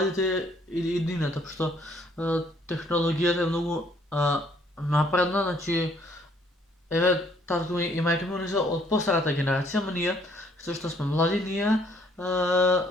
иднината, пошто технологијата е многу напредна, значи еве татко ми и мајка ми се од постарата генерација, ама ние што сме млади, ние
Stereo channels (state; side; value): normal; both; correlation 0.65